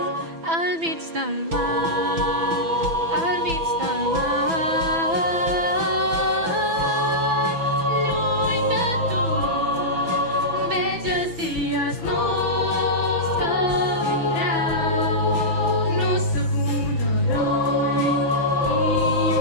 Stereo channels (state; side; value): late; left; 6.0 ms